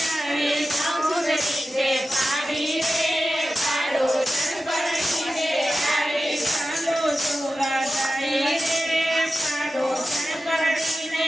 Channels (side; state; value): both; normal; correlation 0.93